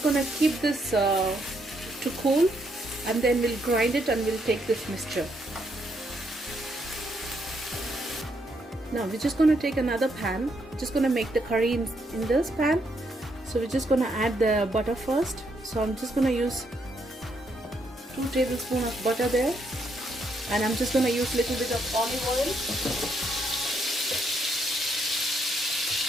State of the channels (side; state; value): both; normal; correlation 0.75